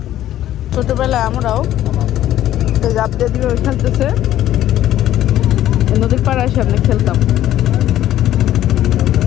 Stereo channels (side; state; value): right; quieter; 12.7 dB